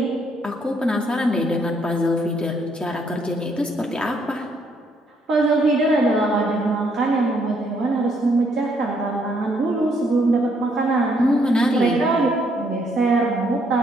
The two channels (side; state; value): both; normal; correlation 0.70